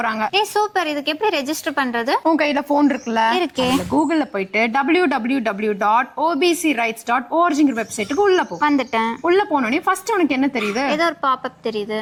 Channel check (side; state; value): both; identical; correlation 1.00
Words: சூப்பர். இதுக்கு எப்படி ரெஜிஸ்டர் பண்றது? உங்க கையில போன் இருக்குல்ல, இருக்கே. கூகுள்ல போயிட்டு www.obcrights.org வெப்சைட்டுக்கு உள்ள போ. வந்துட்டேன். உள்ள போனோடனே ஃபர்ஸ்ட் உனக்கு என்ன தெரியுது? ஏதோ ஒரு பாப்அப் தெரியுது.